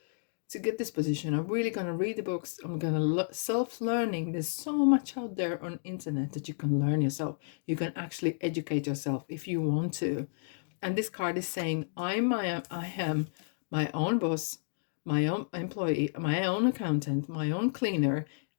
to get this position. I'm really going to read the books. I'm going to self-learning. There's so much out there on internet that you can learn yourself. You can actually educate yourself if you want to. And this card is saying, I am my own boss, my own employee, my own accountant, my own cleaner,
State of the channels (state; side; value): silent; right; digital silence